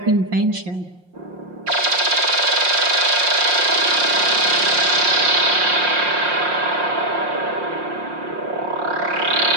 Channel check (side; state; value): left; late; 5.6 ms